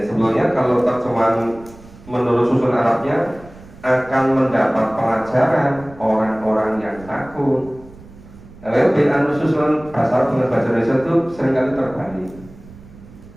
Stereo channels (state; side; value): noise; right; rumble, 21 dB below the sound